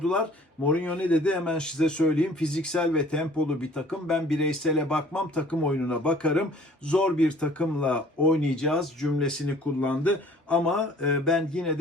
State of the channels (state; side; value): normal; both; correlation 0.52